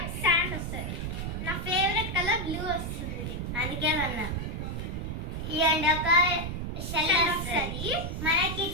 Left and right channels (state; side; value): noise; right; rumble, 4 dB below the sound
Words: శాండ్ వస్తుంది. నా ఫేవరెట్ కలర్ బ్లూ వస్తుంది, అందుకే అన్నా ఇవ్వండి. ఒక షెల్ వస్తుంది మనకి.